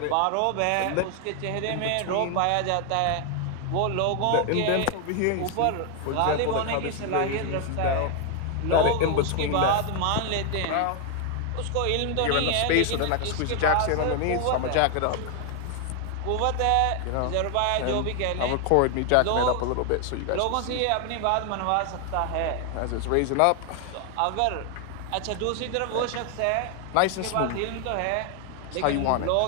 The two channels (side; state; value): both; different; correlation 0.00